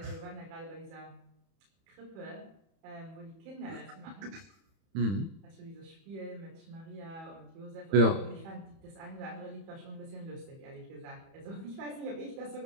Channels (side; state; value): left; late; 31 ms